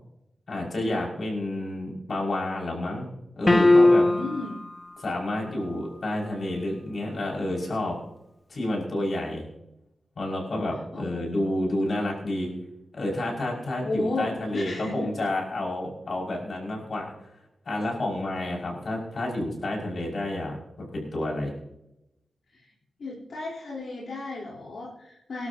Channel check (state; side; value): normal; both; correlation 0.94